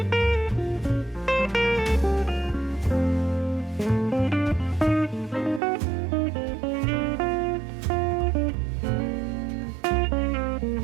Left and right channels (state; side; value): drops out; left; at 5.6 s